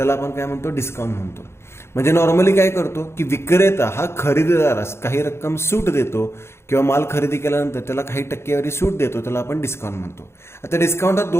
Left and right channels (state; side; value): late; right; 0.12 ms